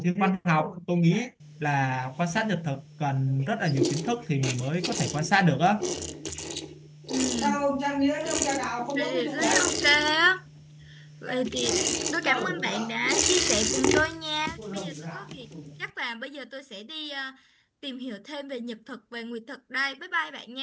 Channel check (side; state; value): both; identical; correlation 1.00